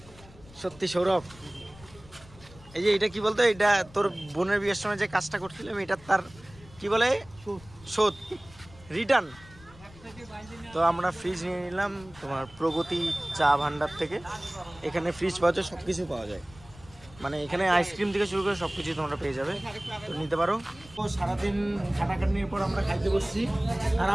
সত্যি সৌরভ। এই যে এটা কি বলতো, এটা তোর বোনের বিয়ের সময় যে কাজটা করছিলাম, এটা তার কি বলে শোধ, রিটার্ন। তো আমরা ফ্রিজ নিয়ে নিলাম তোমার প্রগতি চা ভান্ডার থেকে। এখানে ফ্রিজ পাওয়া যায়, সবকিছু পাওয়া যায়, মানে এখানে আইসক্রিম থেকে শুরু করে সবকিছু তোমরা পেয়ে যাবে, তো নিতে পারো। তো সারাদিন খাটাখাটনির পর আমরা খাইতে বসছি। আর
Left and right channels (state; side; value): noise; left; rumble, 22 dB below the sound